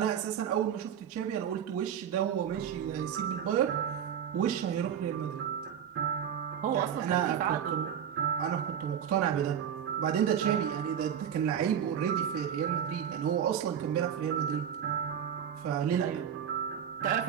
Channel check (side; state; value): left; quieter; 8.7 dB